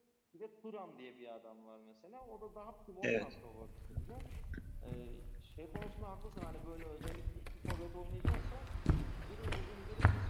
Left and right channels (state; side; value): identical; both; correlation 1.00